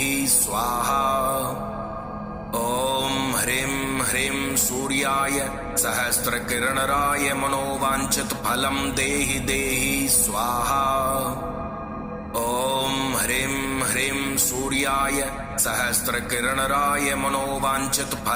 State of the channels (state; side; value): identical; both; correlation 1.00